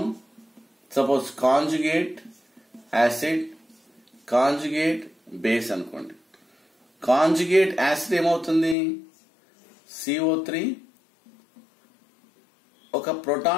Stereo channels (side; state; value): right; drops out; at 8.8 s